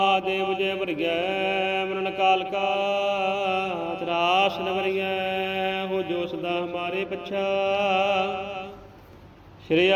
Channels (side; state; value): both; identical; correlation 1.00